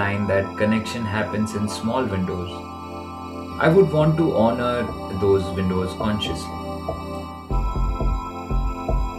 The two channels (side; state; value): both; identical; correlation 1.00